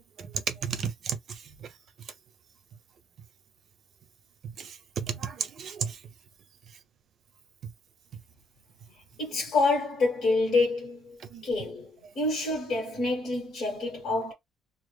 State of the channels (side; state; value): both; normal; correlation 0.70